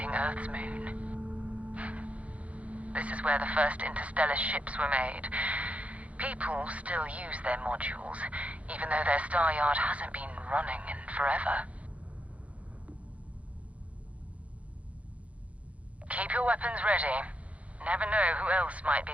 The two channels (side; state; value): left; late; 0.065 ms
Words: Earth's moon. This is where the first interstellar ships were made. People still use their modules, even though their star yard hasn't been running in forever. Keep your weapons ready. Never know who else might be